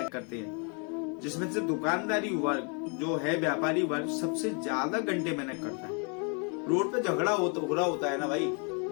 करते हैं, जिसमें से दुकानदारी वर्ग जो है, व्यापारी वर्ग सबसे ज्यादा घंटे मेहनत करता है। रोड पे झगड़ा हो रहा होता है ना भाई,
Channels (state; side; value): quieter; right; 37.2 dB